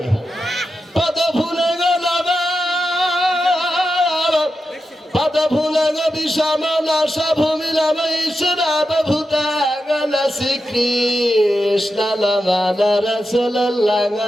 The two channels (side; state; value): both; normal; correlation 0.89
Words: পদ ভুলে গেল, পদ ভুলে গে বিষমনা সভূমিলাম ঈশ্বরাব ভূতাগণ শ্রীকৃষ্ণ নাম রাসূলুল্লাহ